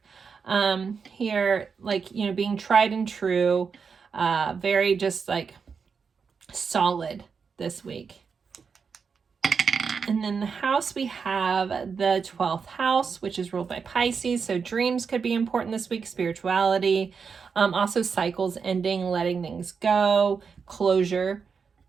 Here, like, being tried and true, very just like solid this week. And then the house, we have the 12th house, which is ruled by Pisces. So dreams could be important this week, spirituality, also cycles ending, letting things go, closure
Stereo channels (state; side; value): quieter; left; 5.8 dB